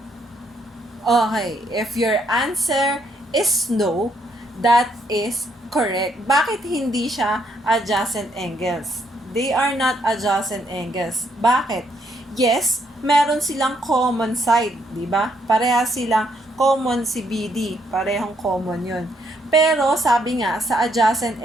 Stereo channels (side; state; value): both; normal; correlation 0.73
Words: Okay, if your answer is no, that is correct. Bakit hindi siya adjacent angles? They are not adjacent angles. Bakit? Yes, meron silang common side, di ba? Pareha silang common si BD, parehong common yun. Pero sabi nga, sa adjacent